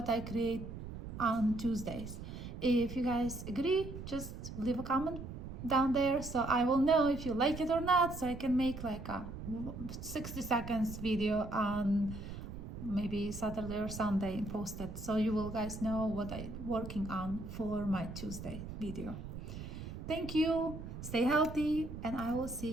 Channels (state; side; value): noise; right; rumble, 9 dB below the sound